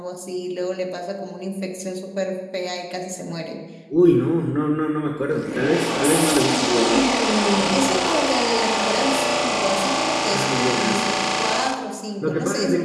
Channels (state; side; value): identical; both; correlation 1.00